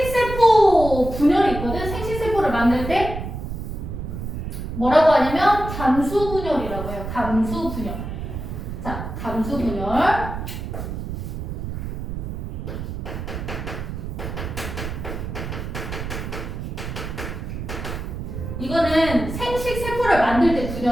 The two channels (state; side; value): noise; right; rumble, 6 dB below the sound